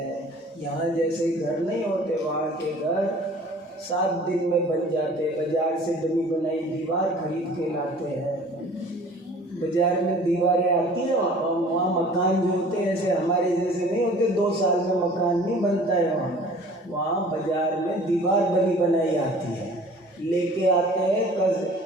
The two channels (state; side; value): normal; both; correlation 0.48